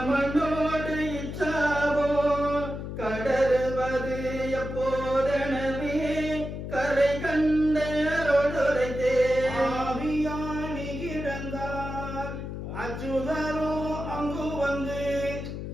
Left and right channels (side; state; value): left; noise; hum, 7 dB below the sound